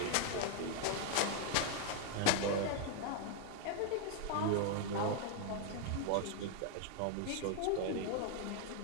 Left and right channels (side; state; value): both; different; correlation 0.00